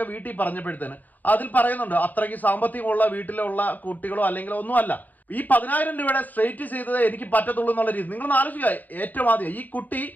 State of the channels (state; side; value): late; right; 0.083 ms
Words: വീട്ടിൽ പറഞ്ഞപ്പോഴത്തേന് അതിൽ പറയുന്നുണ്ട് അത്രയ്ക്ക് സാമ്പത്തികമുള്ള വീട്ടിലുള്ള കുട്ടികളോ അല്ലെങ്കിൽ ഒന്നുമല്ല, ഈ 10,000 രൂപയുടെ സ്ട്രെയിറ്റ് ചെയ്തത് എനിക്ക് പറ്റത്തുള്ളൂ എന്നുള്ള രീതി. നിങ്ങളൊന്ന് ആലോചിക്കുക, ഏറ്റവും ആദ്യം ഈ കുട്ടി